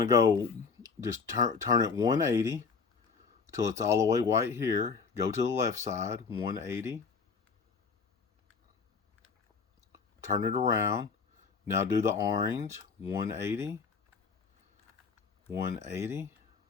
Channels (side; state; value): right; quieter; 5.2 dB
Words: to go, just turn it 180 till it's all the way white here. Go to the left side, 180. Turn it around. Now do the orange, 180, 180.